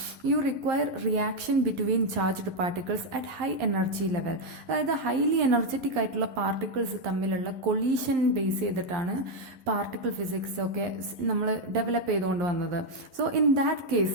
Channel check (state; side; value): late; left; 11 ms